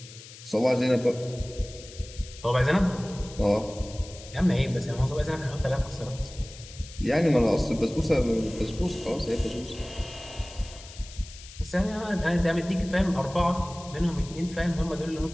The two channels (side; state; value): left; noise; hiss, 17 dB below the sound